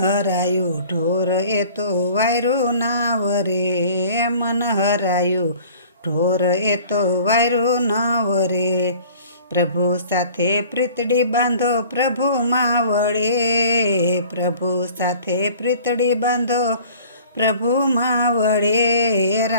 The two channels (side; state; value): both; inverted; correlation -0.48